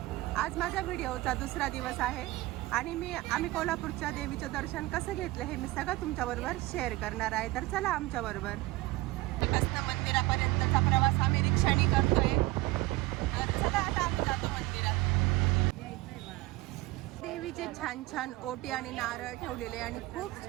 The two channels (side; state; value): left; quieter; 19.9 dB